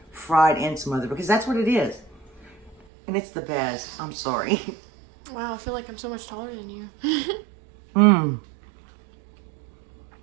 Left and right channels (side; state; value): left; drops out; at 2.8 s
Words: fried and smothered because that's what it is. And it's the best. I'm sorry. Wow, I feel like I'm so much taller than you. Mmm.